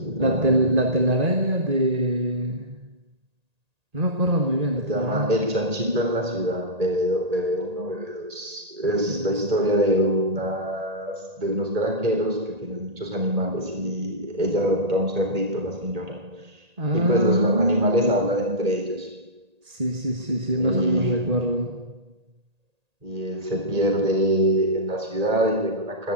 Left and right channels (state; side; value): late; left; 1.8 ms